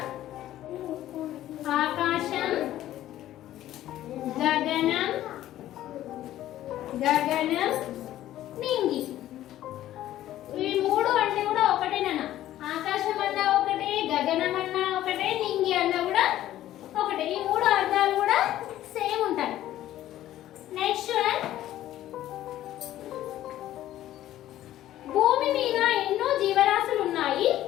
ఆకాశం, గగనం, గగనం, నింగి. ఈ మూడు అంటే కూడా ఒకటేనా? ఆకాశం అన్నా ఒకటే, గగనం అన్నా ఒకటే, నింగి అన్నా కూడా ఒకటే. ఈ మూడు అర్థాలు కూడా సేమ్ ఉంటాయి. నెక్స్ట్ వన్, భూమి మీద ఎన్నో జీవరాశులు ఉన్నాయి,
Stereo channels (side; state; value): right; quieter; 13.4 dB